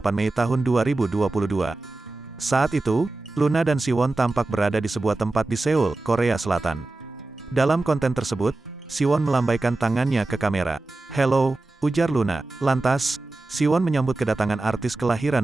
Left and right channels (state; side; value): quieter; left; 3.1 dB